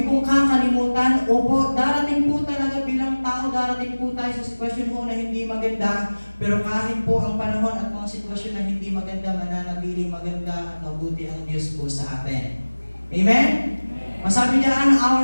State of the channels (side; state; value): both; inverted; correlation -1.00